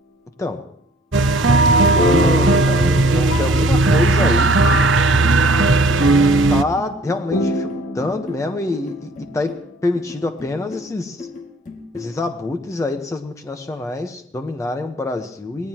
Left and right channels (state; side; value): normal; both; correlation 0.54